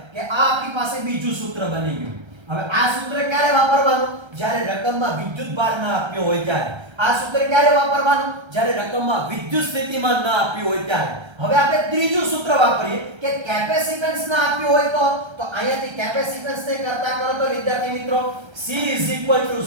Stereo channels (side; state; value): left; late; 1.3 ms